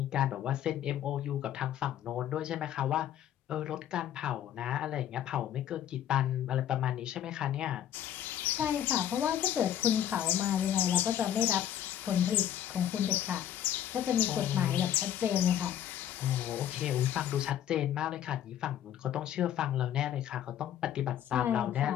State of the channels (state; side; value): quieter; right; 10.7 dB